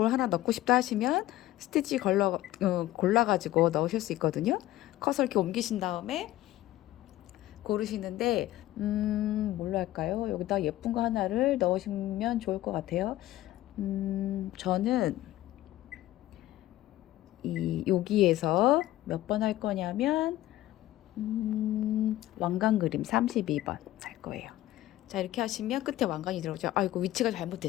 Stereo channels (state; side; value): quieter; right; 15.3 dB